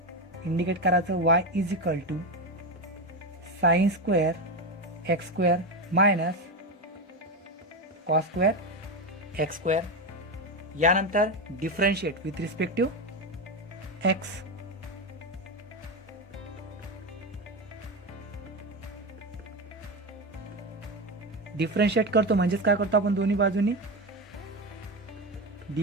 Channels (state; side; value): normal; both; correlation 0.15